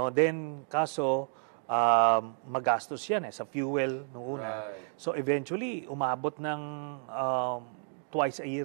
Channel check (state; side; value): silent; left; 57 dB below the other